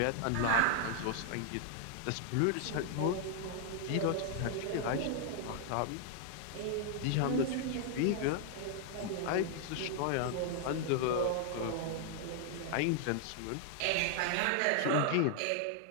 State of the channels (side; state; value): both; different; correlation 0.00